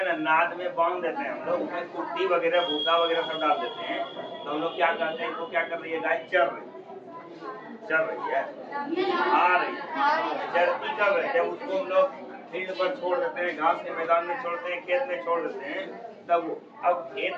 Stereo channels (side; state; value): both; identical; correlation 1.00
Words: ना नाद में बांध देते हैं हम लोग, उसमें कुट्टी वगैरह भूसा वगैरह सब डाल देते हैं, तो हम लोग क्या करते हैं, तो क्या कर रही है, गाय चर रही है, खा रही है। चरती कब है, जब उसको हम लोग फील्ड पर छोड़ देते हैं, घास के मैदान में छोड़ते हैं, खेत में छोड़ देते हैं, तब अब खेत